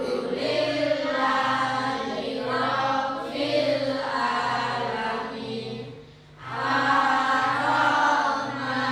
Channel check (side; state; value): both; identical; correlation 1.00